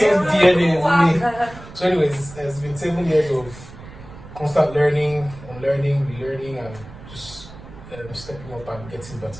DNA in me. So, anyways, it's been 7 years of constant learning, unlearning, relearning, and just stepping up and getting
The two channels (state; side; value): noise; right; rumble, 17 dB below the sound